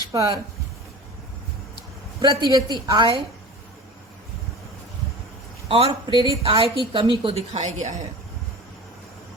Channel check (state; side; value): normal; both; correlation 0.36